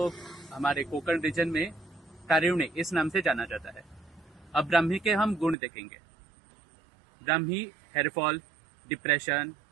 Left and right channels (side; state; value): left; drops out; at 5.6 s